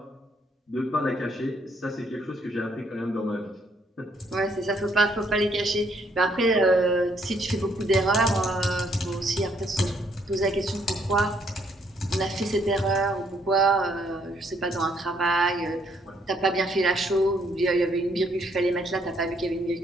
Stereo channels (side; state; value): both; normal; correlation 0.70